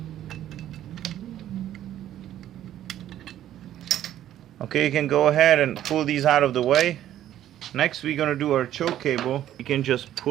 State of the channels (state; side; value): quieter; left; 12.0 dB